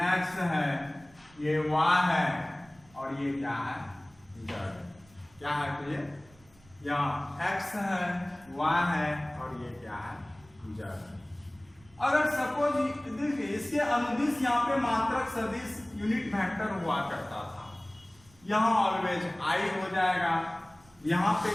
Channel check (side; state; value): right; noise; rumble, 28 dB below the sound